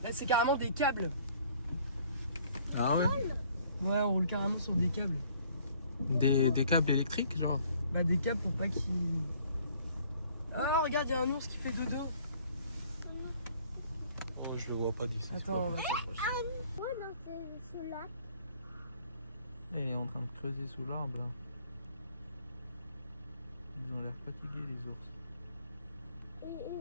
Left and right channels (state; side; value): inverted; both; correlation -0.58